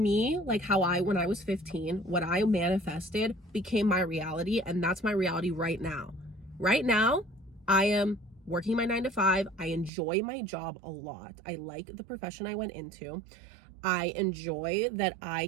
like how when I was 15, what I manifested became my reality. And that's my reality right now. Right now, I am working my 9-to-5. I enjoy my job a lot. I like the profession I went into. I enjoy that I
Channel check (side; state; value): left; drops out; at 9.9 s